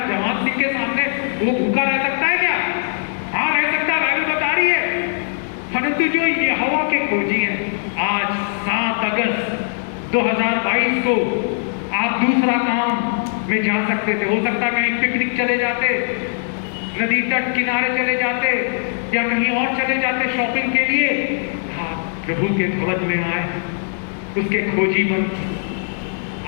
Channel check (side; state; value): right; silent; digital silence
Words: जवान सिंह के सामने वो भूखा रह सकता है क्या? हाँ रह सकता है, बाइबल बता रही है। परंतु जो यहोवा के खोजी हैं, आज 7 अगस्त 2022 को आप दूसरा काम में जा सकते थे। हो सकता है कहीं पिकनिक चले जाते, नदी तट किनारे चले जाते या कहीं और चले जाते शॉपिंग के लिए। हाँ, प्रभु के भवन में आए, उसके खोजी बन,